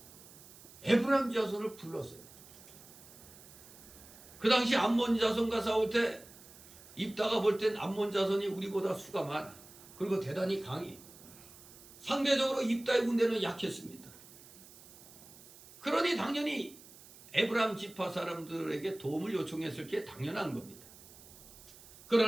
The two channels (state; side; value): noise; right; hiss, 20 dB below the sound